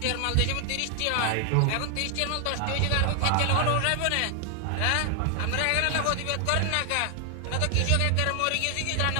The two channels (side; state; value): both; different; correlation 0.00